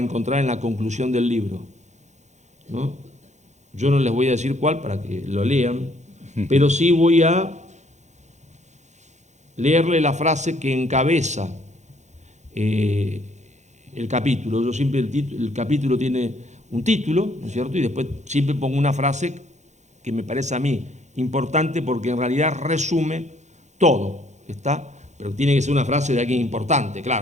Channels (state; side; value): late; left; 0.34 ms